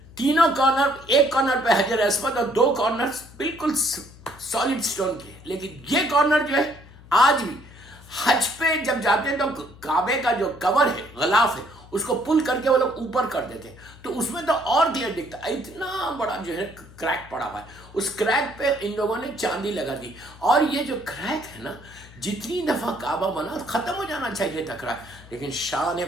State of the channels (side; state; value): left; noise; hum, 21 dB below the sound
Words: تینوں کارنر, ایک کارنر پہ حجر اسود اور 2 کارنر بالکل سالڈ سٹون کی ہے. لیکن یہ کارنر جو ہے آج بھی حج پہ جب جاتے ہیں تو کعبے کا جو کور ہے, غلاف ہے, اس کو پل کر کے وہ لوگ اوپر کر دیتے ہیں تو اس میں تو اور کلیئر دکھتا ہے. اتنا بڑا جو ہے کریک پڑا ہوا ہے, اس کریک پہ ان لوگوں نے چاندی لگا دی. اور یہ جو کریک ہے نا جتنی دفعہ کعبہ بنا ختم ہو جانا چاہیے تھا کریک, لیکن شان